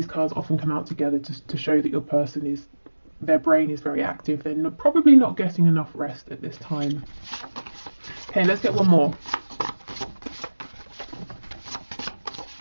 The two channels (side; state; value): both; inverted; correlation -1.00